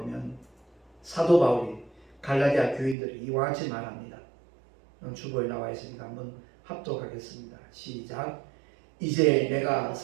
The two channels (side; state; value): left; drops out; at 3.0 s